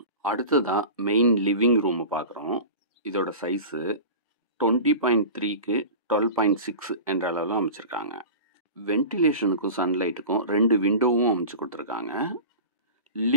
அடுத்ததான் மெயின் லிவிங் ரூமை பார்க்குறோம். இதோட சைஸு 20.3க்கு 12.6 என்ற அளவில் அமைச்சிருக்காங்க. வென்டிலேஷனுக்கும் சன்லைட்டுக்கும் 2 விண்டோவும் அமைச்சு கொடுத்துருக்காங்க.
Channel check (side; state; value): both; inverted; correlation -0.34